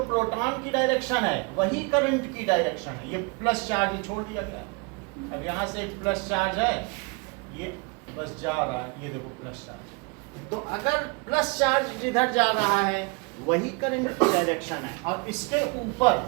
प्रोटॉन की डायरेक्शन है वही करंट की डायरेक्शन है। ये प्लस चार्ज छोड़ दिया गया है। अब यहां से एक प्लस चार्ज है, ये बस जा रहा है, ये देखो प्लस चार्ज। तो अगर प्लस चार्ज जिधर जा रहा है वही करंट की डायरेक्शन है और इसके ऊपर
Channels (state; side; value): quieter; left; 30.3 dB